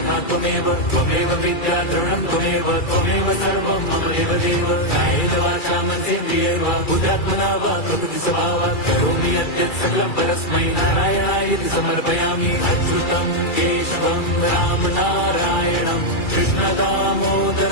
त्वमेव विद्या द्रवणं त्वमेव सर्वं मम देव कायेन वाचा मनसेन्द्रियैर्वा बुद्ध्यात्मना वा प्रकृति स्वभावात् करोमि यद्यत् सकलं परस्मै नारायणायति समर्पयामि अच्युतं केशवं राम नारायणं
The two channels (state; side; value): late; right; 2.3 ms